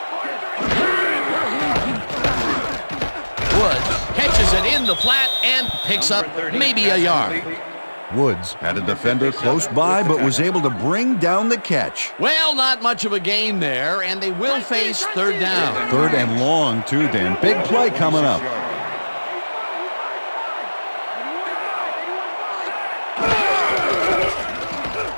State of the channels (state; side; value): inverted; both; correlation -1.00